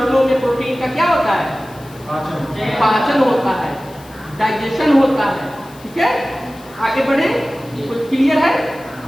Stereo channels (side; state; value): left; noise; hiss, 24 dB below the sound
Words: में प्रोटीन का क्या होता है? पाचन होता है, डाइजेशन होता है। ठीक है, आगे बढ़े, कुछ क्लियर है?